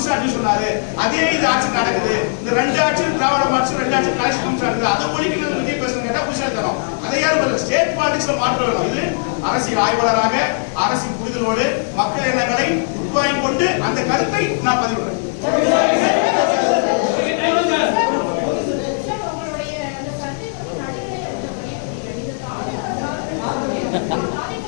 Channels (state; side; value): silent; right; digital silence